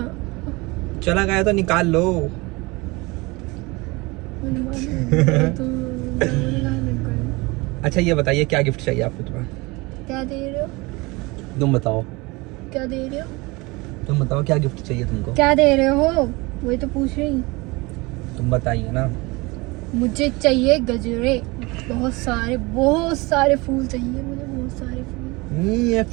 चला गया तो निकाल लो। अच्छा ये बताइए, क्या गिफ्ट चाहिए आपको? तुम्हें क्या दे रहे हो? तुम बताओ। क्या दे रहे हो? तुम बताओ, क्या गिफ्ट चाहिए तुमको? क्या दे रहे हो? वही तो पूछ रही। तुम बताइए ना। मुझे चाहिए गजरे, बहुत सारे फूल चाहिए मुझे, बहुत सारे फूल। ये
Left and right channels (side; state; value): left; quieter; 24.4 dB